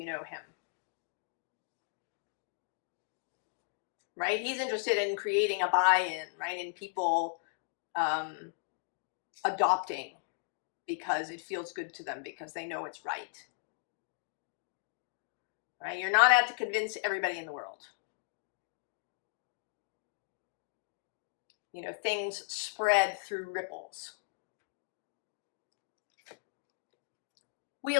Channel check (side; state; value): right; silent; digital silence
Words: know him. Right? He's interested in creating a buy-in, right? In people adopting because it feels good to them, because they know it's right. Right? You're not out to convince everybody in the world. Things spread through ripples.